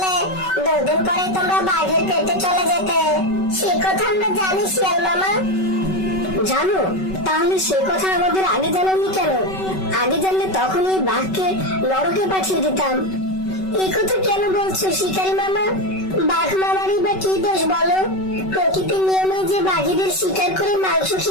2 দিন পরে তোমরা বাঘের পেটে চলে যেতে। সে কথা আমরা জানি শিয়াল মামা। জানো? তাহলে সে কথা আমাদের আগে জানাওনি কেন? আগে জানলে তখনই বাঘকে নরকে পাঠিয়ে দিতাম। এই কথা কেন বলছো শিকারী মামা? বাঘ মামারই বা কি দোষ বলো? প্রকৃতির নিয়মে যে বাঘেদের শিকার করে মাংস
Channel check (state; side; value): late; right; 5.3 ms